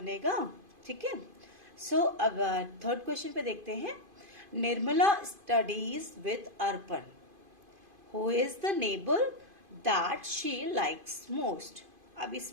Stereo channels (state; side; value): late; left; 2.5 ms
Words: ठीक है। सो अब थर्ड क्वेश्चन पे देखते हैं। Nirmala studies with Arpan, Who is the neighbor that she likes most? अब